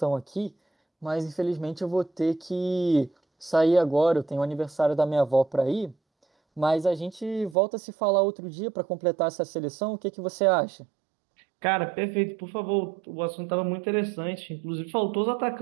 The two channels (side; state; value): left; drops out; at 7.6 s